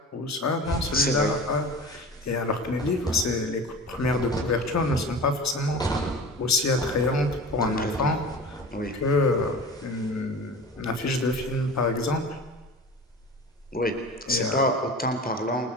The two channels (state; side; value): normal; both; correlation 0.35